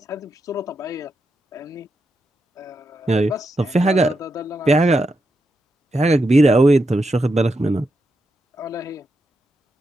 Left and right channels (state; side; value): normal; both; correlation 0.85